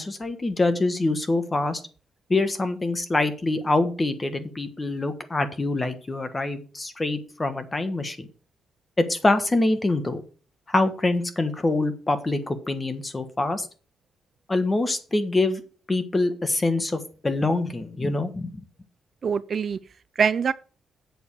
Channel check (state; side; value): normal; both; correlation 0.89